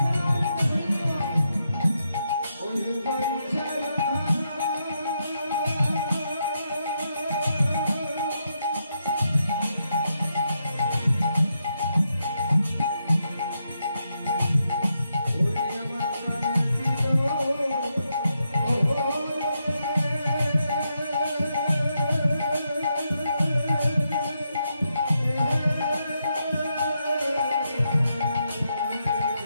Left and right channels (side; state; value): both; inverted; correlation -0.82